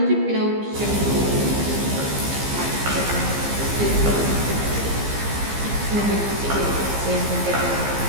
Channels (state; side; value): late; left; 15 ms